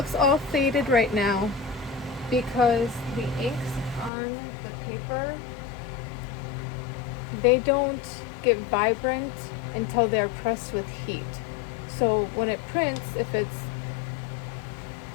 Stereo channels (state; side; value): drops out; right; at 4.1 s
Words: all faded right now because the inks on the paper, they don't get vibrant until they're pressed with heat. So when it prints, if it's